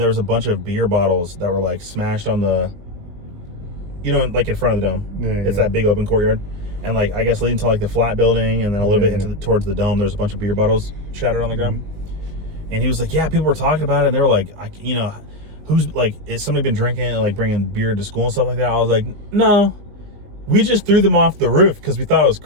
was a bunch of beer bottles that were like smashed on the, like in front of the dome. Yeah, it's that big open courtyard. And like, I guess leading to like the flat building and then a little bit towards the dome, there's a bunch of beer bottles shattered on the ground. And he was like, yeah, people were talking about it. And they were like, who's like, is somebody been drinking and like bringing beer to school and stuff like that? I was like, no, we just threw them off the roof because we thought it was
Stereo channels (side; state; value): left; late; 20 ms